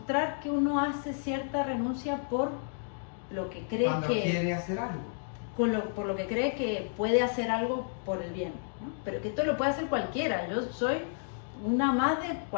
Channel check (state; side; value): silent; right; digital silence